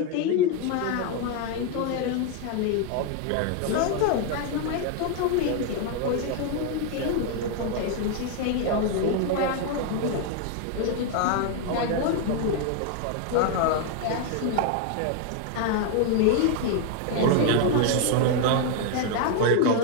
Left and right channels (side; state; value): both; different; correlation 0.00